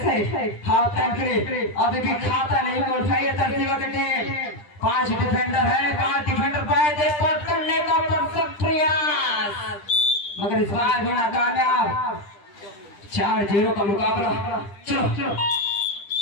है। हाफ टाइम के लिए अभी भी खाता नहीं को उठाइए तरसीमा की टीम। 5 डिफेंडर है, 5 डिफेंडर पाए थे पट करने का परफेक्ट प्रयास मगर इस बार भी नाकामयाब। 4-0 का मुकाबला। चलो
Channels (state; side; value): late; right; 10 ms